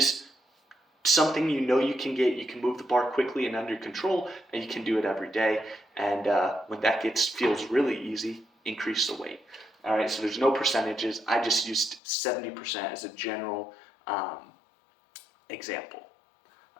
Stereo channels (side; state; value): right; drops out; at 12.0 s